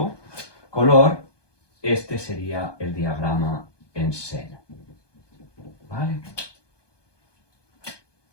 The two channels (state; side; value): late; right; 1.2 ms